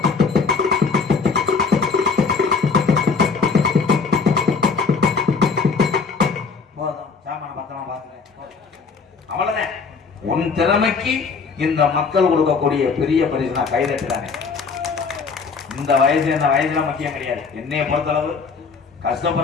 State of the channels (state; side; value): quieter; right; 5.1 dB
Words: உன் திறமைக்கு இந்த மக்கள் கொடுக்கக்கூடிய பெரிய பரிசு நான் கைதட்டுறானே. இந்த வயசு என்ன வயசுல முக்கியம் கிடையாது. என்னைய பொறுத்தளவு